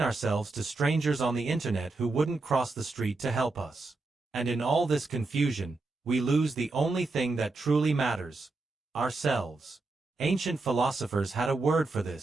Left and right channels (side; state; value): left; quieter; 3.4 dB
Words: ourselves to strangers on the internet who wouldn't cross the street to help us. And in all this confusion, we lose the only thing that truly matters: ourselves. Ancient philosophers had a word for